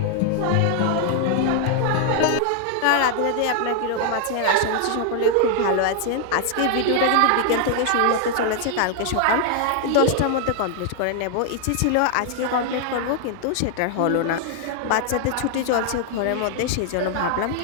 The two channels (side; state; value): both; different; correlation 0.00